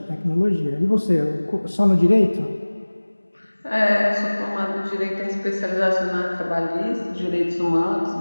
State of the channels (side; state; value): both; inverted; correlation -1.00